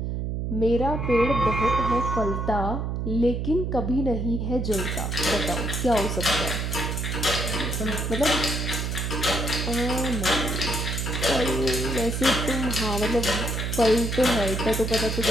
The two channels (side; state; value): right; noise; hum, 2 dB below the sound